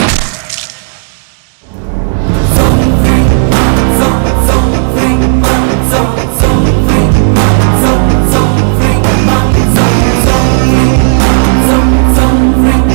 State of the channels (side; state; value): left; silent; 73 dB below the other